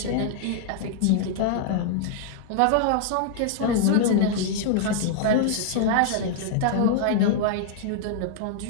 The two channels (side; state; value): both; different; correlation -0.01